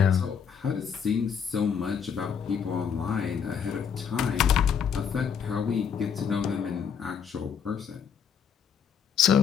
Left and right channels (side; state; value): right; quieter; 7.2 dB